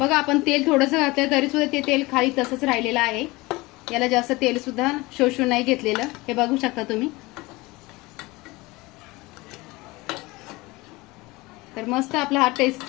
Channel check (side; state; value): right; quieter; 22.2 dB